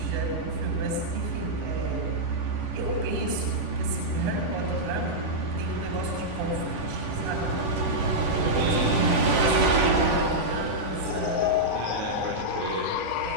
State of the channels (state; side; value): late; left; 10 ms